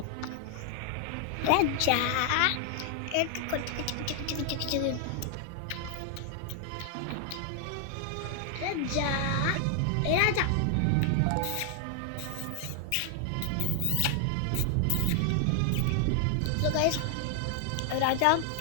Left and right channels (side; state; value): both; different; correlation 0.00